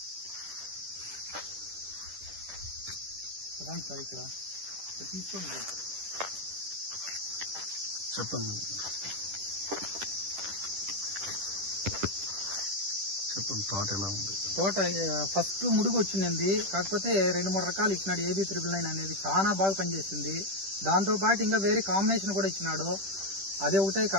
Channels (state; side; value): late; left; 10 ms